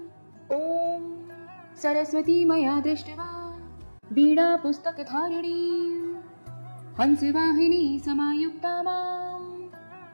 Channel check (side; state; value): both; inverted; correlation -1.00